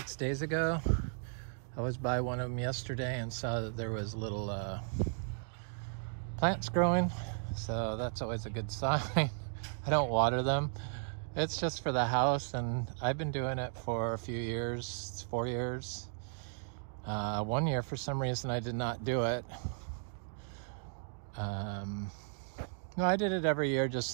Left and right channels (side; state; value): left; silent; digital silence